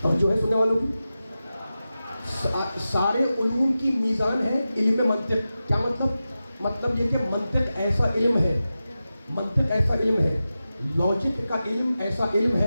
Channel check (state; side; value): inverted; both; correlation -0.93